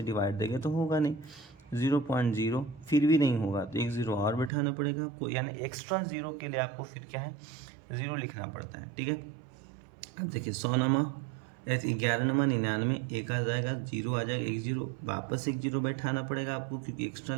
डिवाइड देंगे तो होगा नहीं, 0.0 फिर भी नहीं होगा, तो 1 0 और बैठाना पड़ेगा आपको, यानी एक्स्ट्रा 0 के लिए आपको फिर क्या है 0 लिखना पड़ता है। ठीक है, अब देखिए 100 नमा 11 नमा 99, 1 आ जाएगा, 0 आ जाएगा, 1 0 वापस 1 0 बैठाना पड़ेगा आपको क्योंकि एक्स्ट्रा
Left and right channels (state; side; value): drops out; left; at 4.5 s